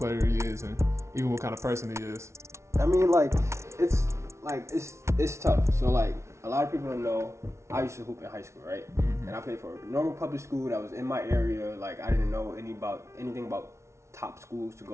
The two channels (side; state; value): left; late; 0.13 ms